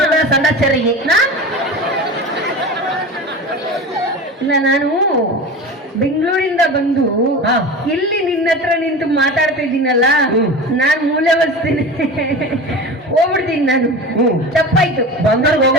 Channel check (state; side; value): normal; both; correlation 0.31